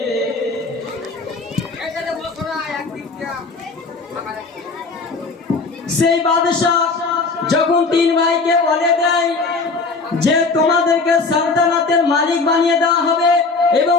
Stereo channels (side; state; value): right; quieter; 4.0 dB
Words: সেই বাদশাহ যখন 3 ভাইকে বলে দেয় যে তোমাদেরকে সালতানাতের মালিক বানিয়ে দেওয়া হবে এবং